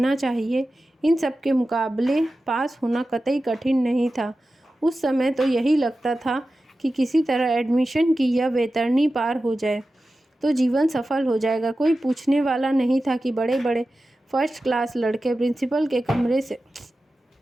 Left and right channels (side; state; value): both; normal; correlation 0.94